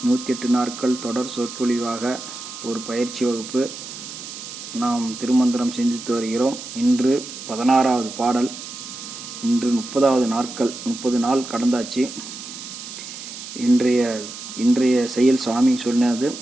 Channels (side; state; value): right; noise; hiss, 11 dB below the sound